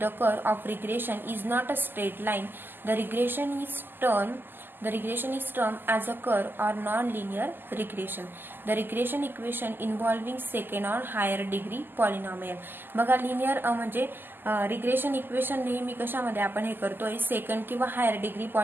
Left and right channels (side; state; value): left; late; 0.094 ms